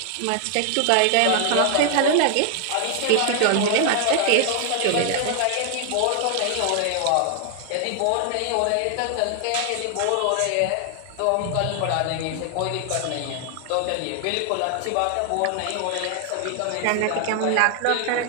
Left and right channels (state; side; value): different; both; correlation 0.00